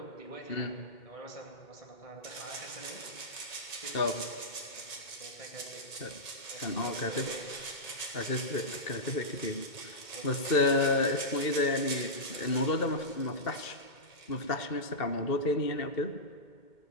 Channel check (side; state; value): right; late; 2.2 ms